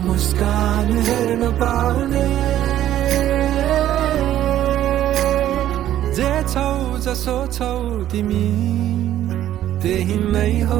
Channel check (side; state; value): left; quieter; 12.3 dB